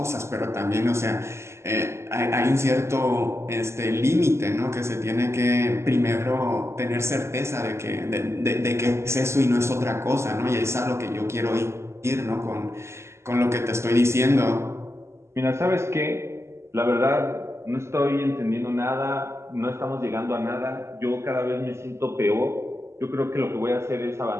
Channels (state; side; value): late; left; 0.13 ms